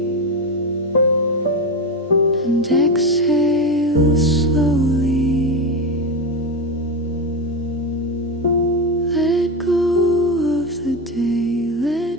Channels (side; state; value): both; normal; correlation 0.16